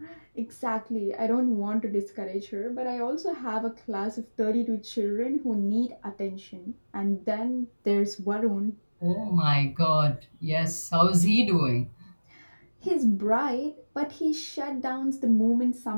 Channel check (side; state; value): both; inverted; correlation -1.00